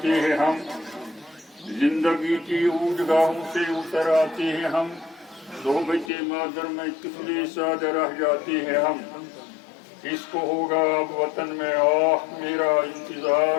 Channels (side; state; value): right; drops out; at 6.1 s